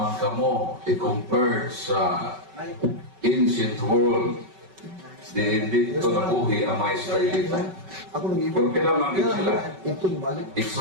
kamo i-compare sa ancient world. Hindi ito nabuhi ang mga Israelita. Ako nang Pero pinamangkin sila. Ito balik.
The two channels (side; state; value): left; late; 5.3 ms